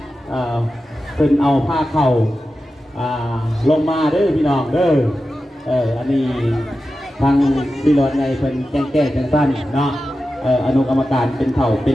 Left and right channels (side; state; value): both; normal; correlation 0.92